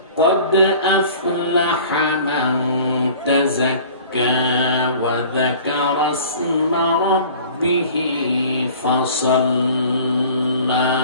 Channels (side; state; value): both; inverted; correlation -0.46